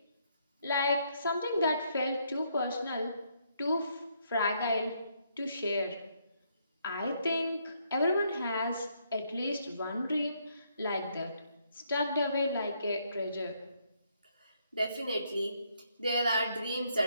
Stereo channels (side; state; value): both; inverted; correlation -0.73